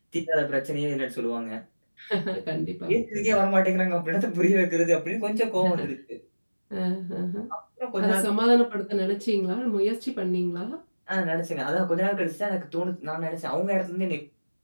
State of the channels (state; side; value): inverted; both; correlation -1.00